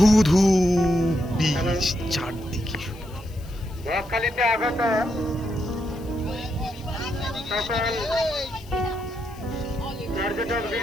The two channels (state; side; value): noise; left; hiss, 25 dB below the sound